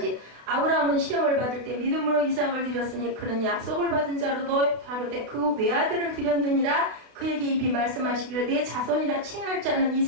아브라함은 시험을 받을 때 믿음으로 이삭을 드렸으니 그는 약속을 받은 자로도 다르되 그 외아들을 드렸느니라. 그에게 입이 말씀하시기를 내 자손이라 칭할 자는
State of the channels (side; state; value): left; late; 32 ms